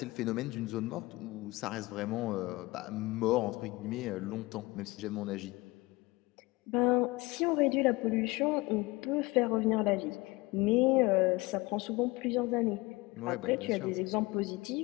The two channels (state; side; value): quieter; right; 22.1 dB